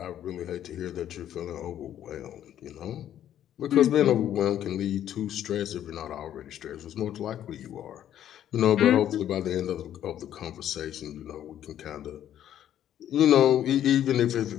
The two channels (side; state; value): right; quieter; 11.0 dB